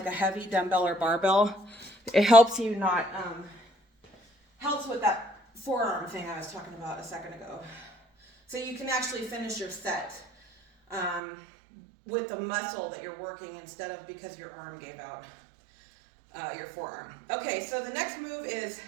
a heavy dumbbell or barbell. It helps you not, helps with that forearm thing I was talking about a second ago. So you can actually finish your set with the muscle that you're working instead of because your arm gave out, your forearm. Okay, so the next move is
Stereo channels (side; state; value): left; drops out; at 11.2 s